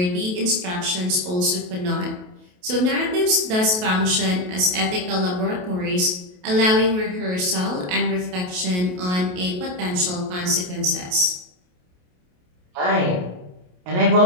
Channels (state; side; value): late; left; 28 ms